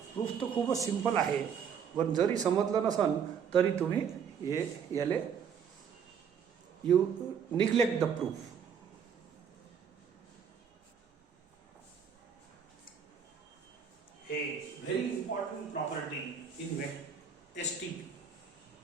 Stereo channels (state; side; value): quieter; left; 7.3 dB